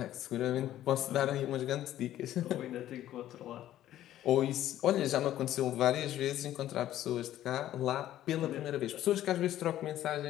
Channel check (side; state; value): right; quieter; 12.9 dB